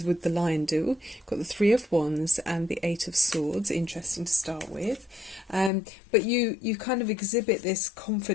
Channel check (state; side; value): drops out; right; at 5.7 s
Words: would the lion do. Got the Three of Wands and the Eight of Swords, interesting to start with. But you kind of exhibit this